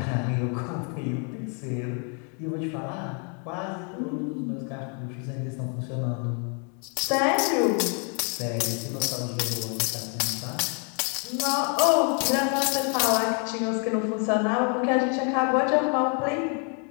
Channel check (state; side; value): quieter; right; 38.5 dB